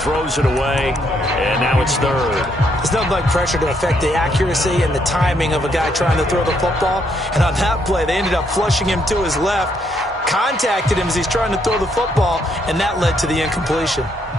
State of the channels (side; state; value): both; normal; correlation 0.73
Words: it away, and now it's 3rd. There's nothing like pressure to affect the accuracy and the timing of a guy trying to throw the football. And on that play, they ended up flushing him to his left, contacted him as he's trying to throw the football, and that led to the incompletion.